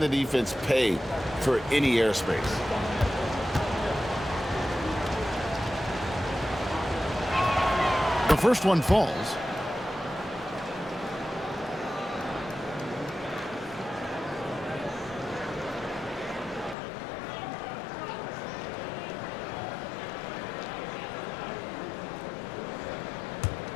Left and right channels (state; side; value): drops out; right; at 16.8 s